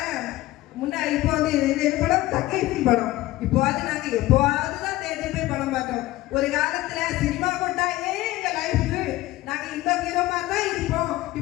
முன்னாடி இப்போ வந்து இந்த படம் தக்கைக்கு படம் இப்போ அது நாங்க எப்போதுதான் தேட்டர் போய் படம் பார்த்தோம். ஒரு காலத்துல சினிமா கொண்டாயே எங்க லைஃபுக்கு நாங்க இந்த ஹீரோ மாதிரி தான் இருப்போம்,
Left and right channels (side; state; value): right; quieter; 17.0 dB